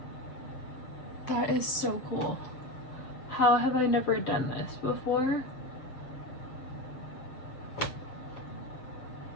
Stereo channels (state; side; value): late; right; 7.7 ms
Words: That is so cool. How have I never done this before?